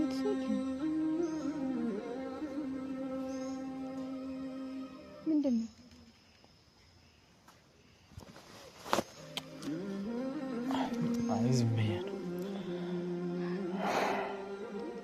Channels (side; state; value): both; identical; correlation 1.00